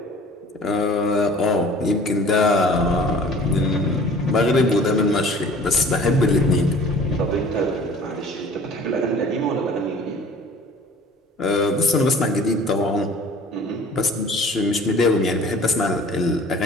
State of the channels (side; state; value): both; normal; correlation 0.47